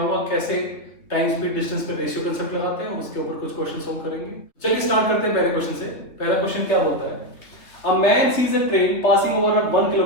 कैसे टाइम स्पीड डिस्टेंस पे रेशियो कंसेप्ट लगाते हैं। उसके ऊपर कुछ क्वेश्चन सोल्व करेंगे। चलिए स्टार्ट करते हैं पहले क्वेश्चन से। पहला क्वेश्चन क्या बोलता है? A man sees a train passing over a 1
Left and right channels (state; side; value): late; right; 3.0 ms